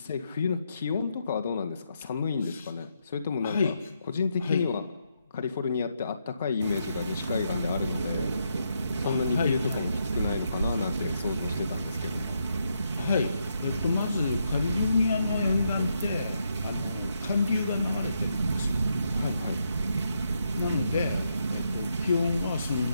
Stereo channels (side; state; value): both; inverted; correlation -0.80